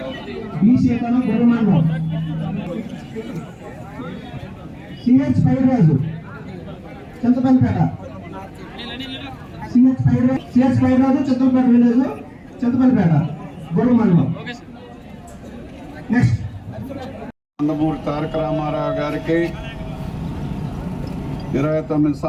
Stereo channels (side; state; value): both; identical; correlation 1.00